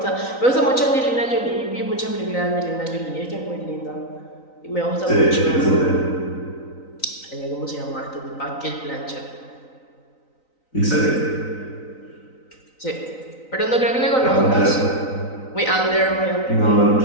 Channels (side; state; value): right; late; 3.9 ms